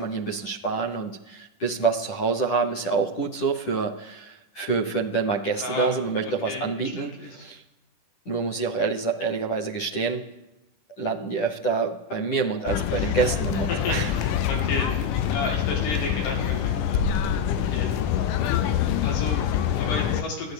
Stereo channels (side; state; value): right; late; 10 ms